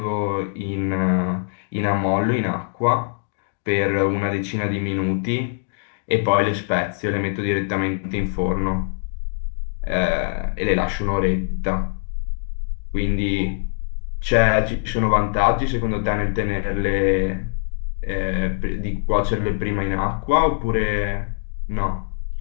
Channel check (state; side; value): silent; right; digital silence